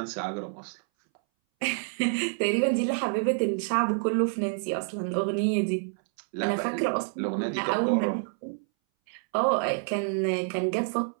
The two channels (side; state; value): left; silent; 59 dB below the other